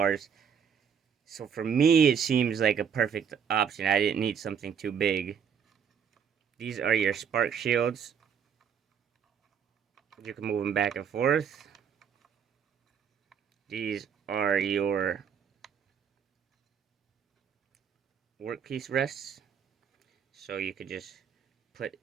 So for me, it seems like a perfect option. I didn't need something too big. These are your spark shields. You can move them back and forth. These are your workpiece rests. So you could just put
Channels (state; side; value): quieter; left; 7.4 dB